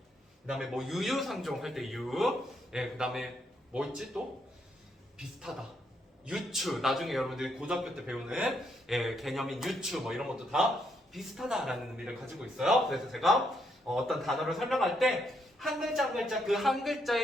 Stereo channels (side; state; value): both; normal; correlation 0.76